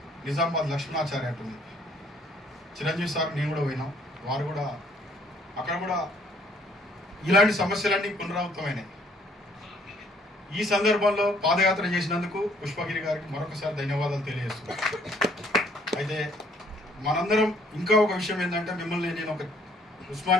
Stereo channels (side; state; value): both; normal; correlation 0.63